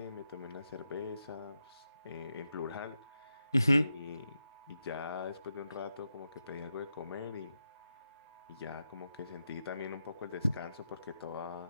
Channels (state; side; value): inverted; both; correlation -0.86